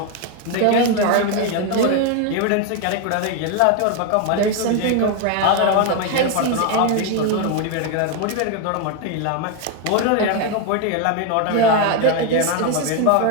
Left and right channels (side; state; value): both; different; correlation 0.01